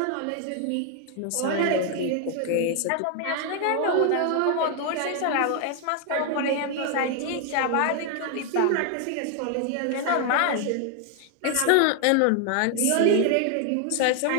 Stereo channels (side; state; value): both; different; correlation 0.00